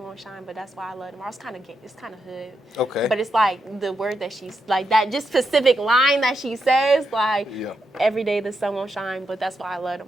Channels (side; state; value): both; normal; correlation 0.83